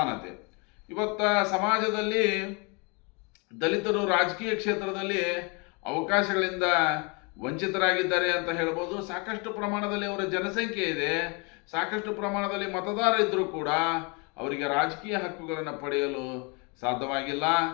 ಇವತ್ತ ಸಮಾಜದಲ್ಲಿ ದಲಿತರು ರಾಜಕೀಯ ಕ್ಷೇತ್ರದಲ್ಲಿ ಅವಕಾಶಗಳಿಂದ ವಂಚಿತರಾಗಿದ್ದಾರೆ ಅಂತ ಹೇಳ್ಬೋದು. ಸಾಕಷ್ಟು ಪ್ರಮಾಣದಲ್ಲಿ ಅವರ ಜನಸಂಖ್ಯೆ ಇದೆ, ಸಾಕಷ್ಟು ಪ್ರಮಾಣದಲ್ಲಿ ಮತದಾರ ಇದ್ದರೂ ಕೂಡ ಅವರಿಗೆ ರಾಜಕೀಯ ಹಕ್ಕುಗಳನ್ನು ಪಡೆಯಲು ಸಾಧ್ಯವಾಗಿಲ್ಲ.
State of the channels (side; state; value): right; quieter; 31.6 dB